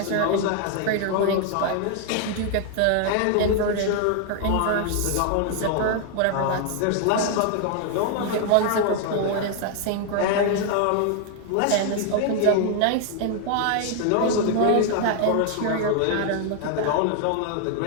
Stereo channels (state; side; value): different; both; correlation 0.00